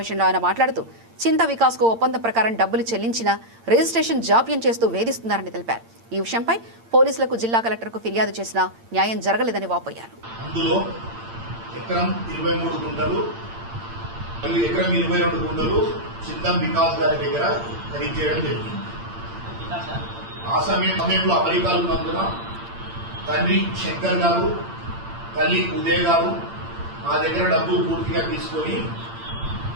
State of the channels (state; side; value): late; left; 8.8 ms